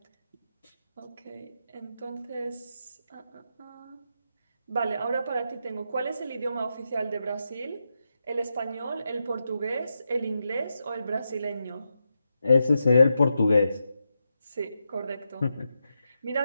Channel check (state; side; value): inverted; both; correlation -0.86